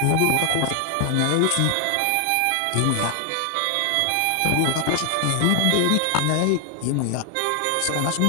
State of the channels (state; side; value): different; both; correlation 0.00